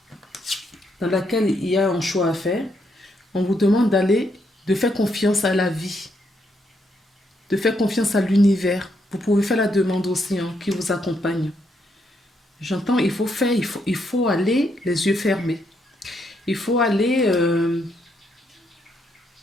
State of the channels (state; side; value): normal; both; correlation 0.76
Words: dans laquelle il y a un choix à faire, on vous demande de faire confiance à la vie, de faire confiance à l'univers. Vous pouvez faire la demande aussi qui vous accompagne. J'entends, il faut aller les yeux fermés. Il faut aller